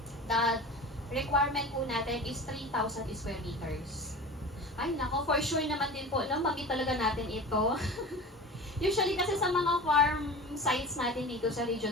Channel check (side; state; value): both; normal; correlation 0.34